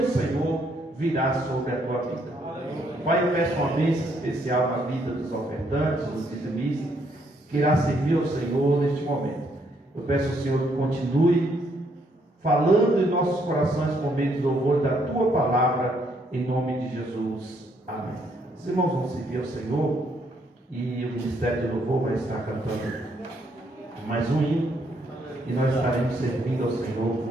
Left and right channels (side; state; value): both; normal; correlation 0.71